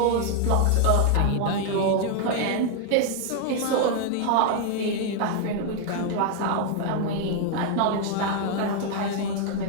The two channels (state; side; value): different; both; correlation 0.00